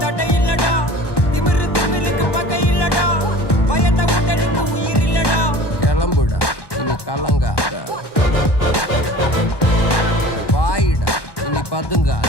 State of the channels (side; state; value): right; late; 1.1 ms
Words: தட்டை இல்லடா, திமிரு திமிலுக்கு பகை இல்லடா, பயந்த உடலுக்கு உயிர் இல்லடா. கிளம்புடா இனி கலங்காத, வாயிடா இனி